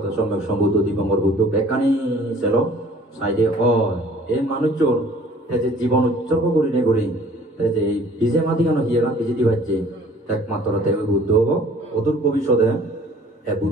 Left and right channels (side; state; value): both; normal; correlation 0.52